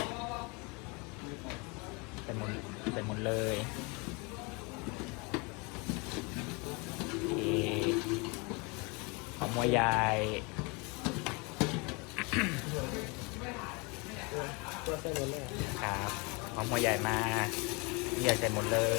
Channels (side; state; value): right; quieter; 29.3 dB